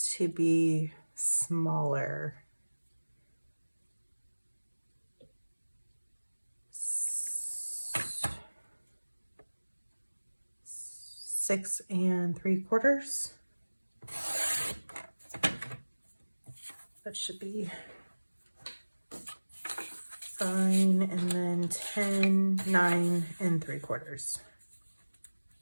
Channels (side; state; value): both; inverted; correlation -1.00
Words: to be smaller. 6 3/4. That should be fine. And then 10, 9 3/4.